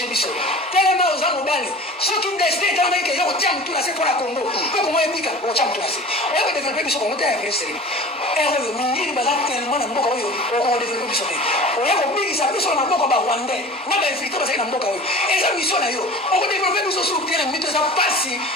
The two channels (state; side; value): normal; both; correlation 0.39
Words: Bisso. Tellement za mobile. Ce qui m'destin dans que yo tiens tout nase pour la Congo. Ko ko moye bika, o tiens tout nase. O yo développer biso ko monter avec sérieux. Erreur mingi baza tellement na mboka oyo o développer biso te. O ya ko bigisa biso na mboka ba Rwandais. Na ba infiltrer baza na mboka oyo. Eza mission na yo. O développer biso sur terrain, mais ça passe